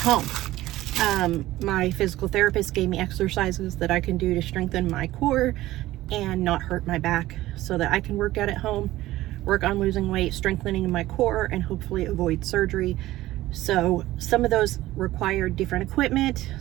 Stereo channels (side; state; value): left; quieter; 16.2 dB